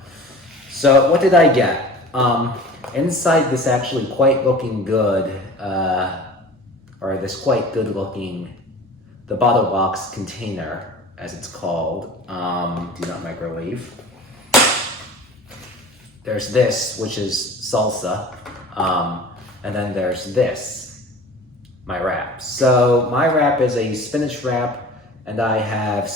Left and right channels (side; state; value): both; normal; correlation 0.41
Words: So what did I get? Inside this actually quite looking good, or this quite good looking, the bottle box container, as it's called, do not microwave. There's this, which is salsa, and then there's this, my wrap. So my wrap is a spinach wrap, and I have